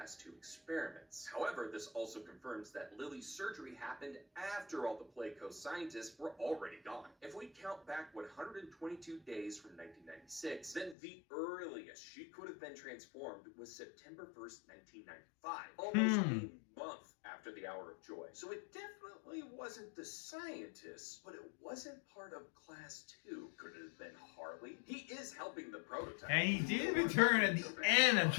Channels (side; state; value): right; drops out; at 11.0 s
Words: 2 experiments. However, this also confirms that Lily's surgery happened after all the Playco scientists were already gone. If we count back 122 days from 1996, then the earliest she could have been transformed was September 1st, 1995. Almost a month after the Hour of Joy. So it definitely wasn't the scientists, but it wasn't part of class 2. Could it have been Harley? He is helping the prototype. And he did return at the end of